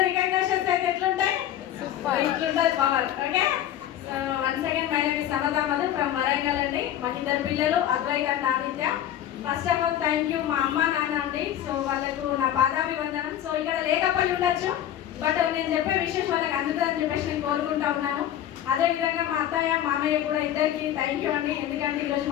రికగ్నిషన్స్ అయితే ఎట్లుంటాయి, ఇట్లుంటుంది power. Okay, so once again my name is Samatha Madhu from Warangal అండి. మాకు 2 పిల్లలు, Advaita and Aditya. First of all thank you మా అమ్మ నాన్న అండి. సో వాళ్ళకు నా పాదాభివందనం. సో ఇక్కడ లేకపోయి ఉండొచ్చు, బట్ నేను చెప్పే విషయం వాళ్ళకి అందుతుందని చెప్పేసి నేను కోరుకుంటా ఉన్నాను. అదేవిధంగా మా అత్తయ్య మామయ్య కూడా ఇద్దరికి థ్యాంక్ యూ అండి. ఎందుకంటే ఈరోజు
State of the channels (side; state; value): right; quieter; 11.5 dB